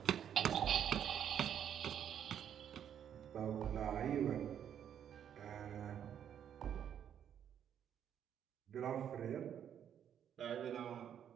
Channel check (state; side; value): quieter; left; 9.2 dB